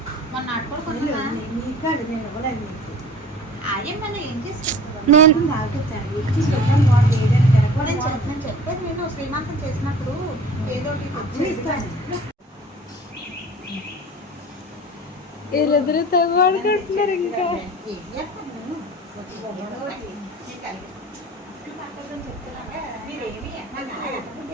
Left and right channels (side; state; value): both; normal; correlation 0.42